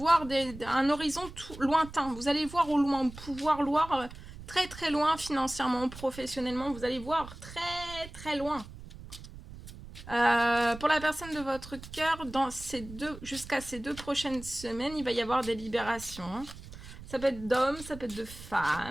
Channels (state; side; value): noise; right; rumble, 15 dB below the sound